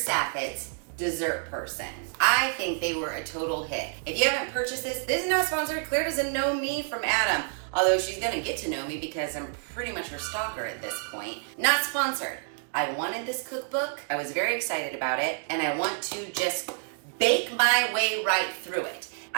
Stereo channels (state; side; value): silent; left; 59 dB below the other